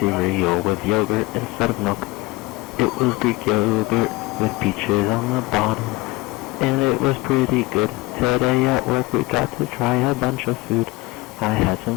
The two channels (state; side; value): quieter; right; 21.0 dB